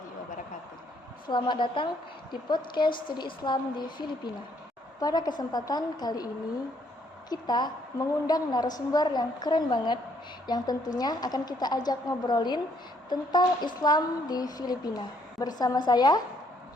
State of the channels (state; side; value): normal; both; correlation 0.69